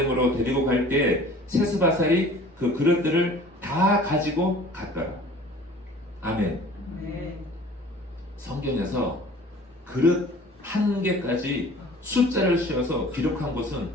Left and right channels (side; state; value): both; normal; correlation 0.47